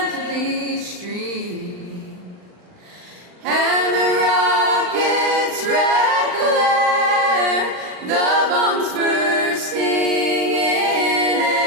streamed, and the rocket's red glare, the bombs bursting in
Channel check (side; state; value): left; late; 39 ms